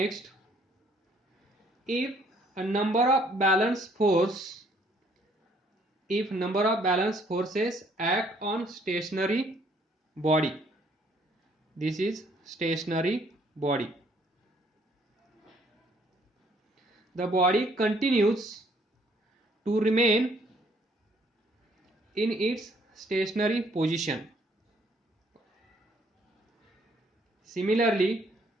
if number of balance forces act on stationary body, this is stationary body, the body continues to remain in its stationary position. Similarly,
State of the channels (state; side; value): normal; both; correlation 0.64